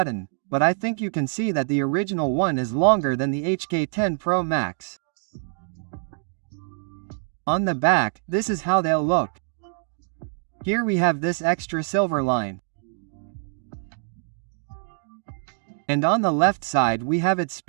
but I think you can see that the original one is longer than the HK10 Pro Max. On the back, this is how they'll look. Here we have this extra silver line. And on the left side we have its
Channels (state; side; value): silent; left; digital silence